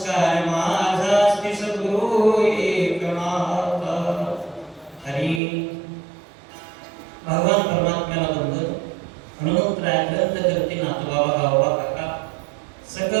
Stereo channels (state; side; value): drops out; left; at 5.4 s